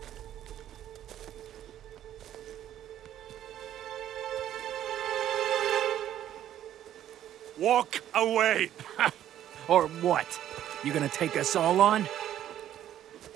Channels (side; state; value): left; quieter; 11.5 dB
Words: Walk away! Or what? You gonna take us all on?